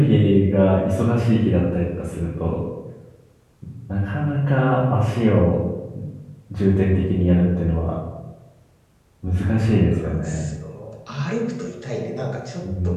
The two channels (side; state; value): both; identical; correlation 1.00